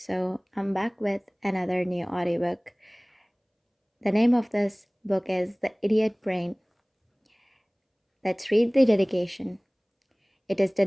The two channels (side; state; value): both; identical; correlation 1.00